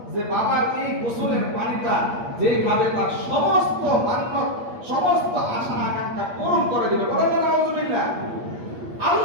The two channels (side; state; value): left; late; 8.5 ms